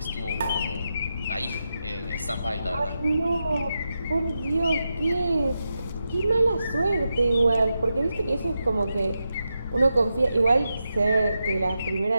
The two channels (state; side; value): inverted; both; correlation -0.88